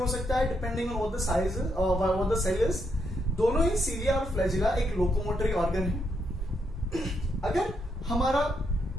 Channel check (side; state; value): both; normal; correlation 0.78